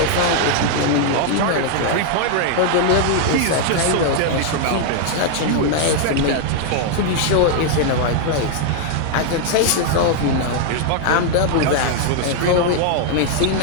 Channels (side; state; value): both; different; correlation 0.00